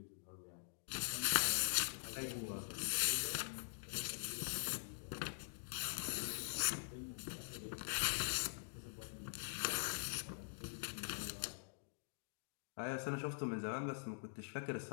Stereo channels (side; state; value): right; silent; digital silence